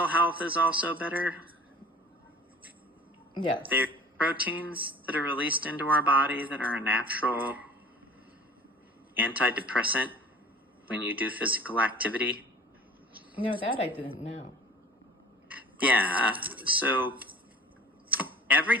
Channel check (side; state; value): both; normal; correlation 0.45